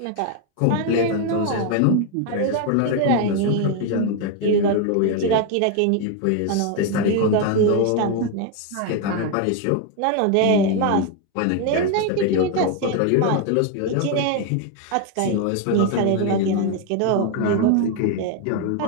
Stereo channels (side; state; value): both; different; correlation 0.01